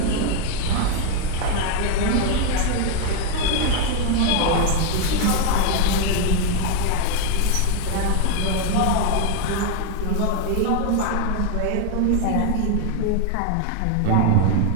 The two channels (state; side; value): different; both; correlation 0.01